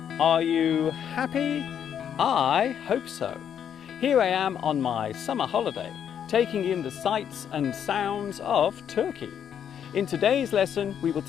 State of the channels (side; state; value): right; quieter; 8.8 dB